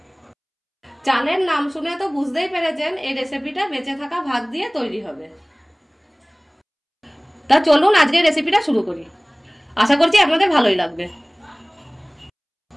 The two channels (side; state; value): both; identical; correlation 1.00